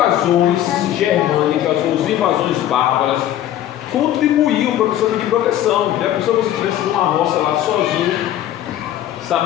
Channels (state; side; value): quieter; right; 12.1 dB